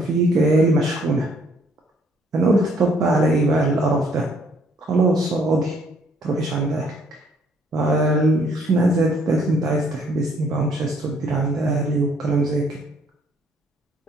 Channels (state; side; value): normal; both; correlation 0.64